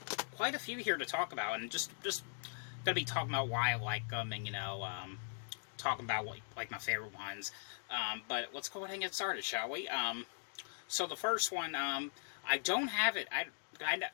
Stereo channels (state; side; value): silent; right; digital silence